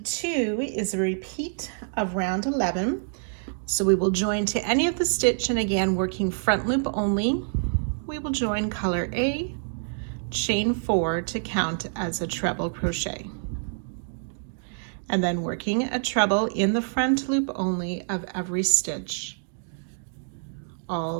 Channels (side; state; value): left; silent; digital silence